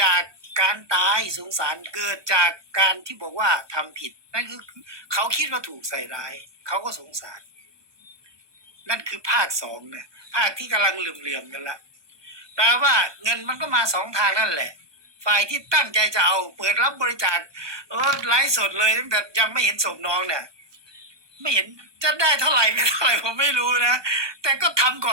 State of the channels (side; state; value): left; late; 1.2 ms